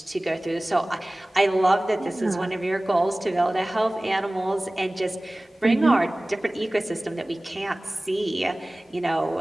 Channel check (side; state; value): both; normal; correlation 0.98